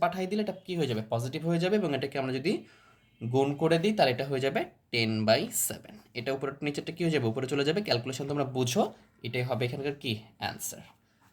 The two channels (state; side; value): identical; both; correlation 1.00